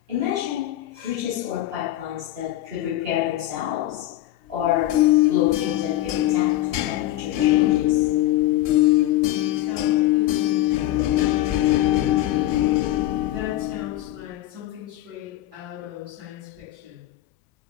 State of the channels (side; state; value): right; quieter; 14.7 dB